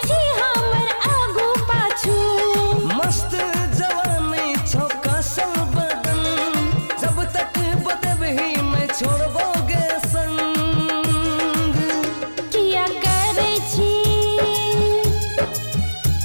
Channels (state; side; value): inverted; both; correlation -1.00